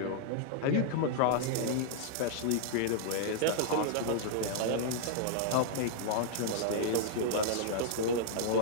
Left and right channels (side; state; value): both; different; correlation -0.01